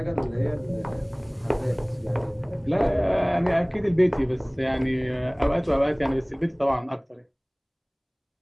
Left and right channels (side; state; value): both; identical; correlation 1.00